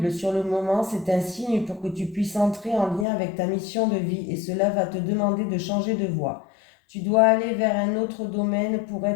sur le moment, c'est un signe pour que tu puisses entrer en lien avec ta mission de vie et cela va te demander de changer de voie. Tu dois aller vers un autre domaine pour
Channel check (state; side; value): drops out; right; at 3.1 s